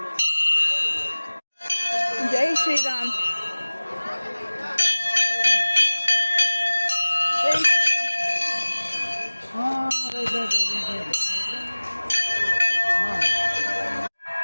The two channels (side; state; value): both; inverted; correlation -1.00